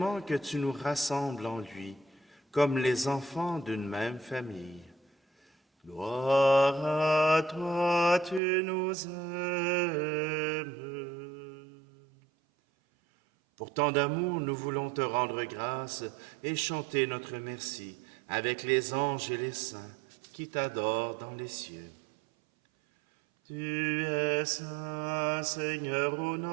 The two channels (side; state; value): left; drops out; at 8.4 s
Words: que tu nous rassembles en lui, comme les enfants d'une même famille. Gloire à toi, tu nous aimes. Pour tant d'amour, nous voulons te rendre grâce et chanter notre merci avec les anges et les saints qui t'adorent dans les cieux. Tu es saint, Seigneur, ô